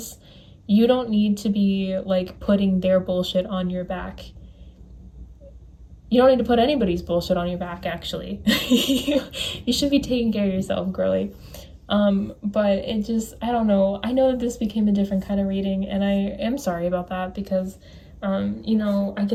You don't need to be putting their bullshit on your back. You don't need to put anybody's bullshit on your back, actually. You should be taking care of yourself, girly. But it just, I don't know. I know that this became a different kind of reading, and I am sorry about that, because, I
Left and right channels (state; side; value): identical; both; correlation 1.00